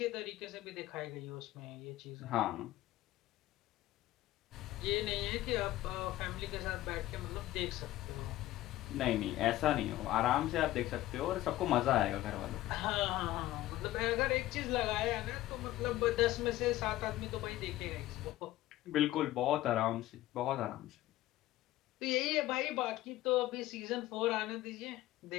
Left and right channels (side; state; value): right; quieter; 15.8 dB